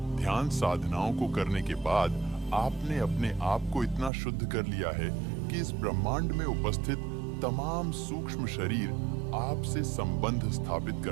ध्यान साधनाओं को करने के बाद आपने अपने आप को इतना शुद्ध कर लिया है कि इस ब्रह्मांड में उपस्थित तमाम सूक्ष्म शरीर आपसे संबंध स्थापित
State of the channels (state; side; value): drops out; left; at 4.1 s